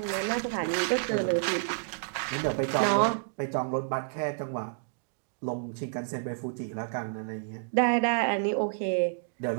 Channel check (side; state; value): left; silent; digital silence